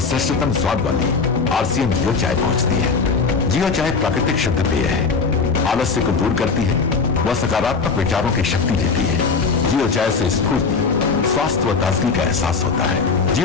श्रेष्ठतम स्वाद वाली आरसीएम जियो चाय पहुंचती है। जियो चाय प्राकृतिक शुद्ध पेय है, आलस्य को दूर करती है, वह सकारात्मक विचारों की शक्ति देती है। जियो चाय से स्फूर्ति, स्वास्थ्य व ताजगी का एहसास होता है।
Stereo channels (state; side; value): quieter; right; 4.8 dB